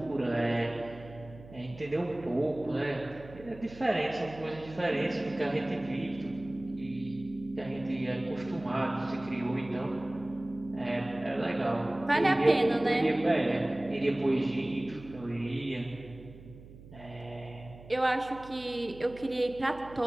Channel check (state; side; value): noise; right; hum, 18 dB below the sound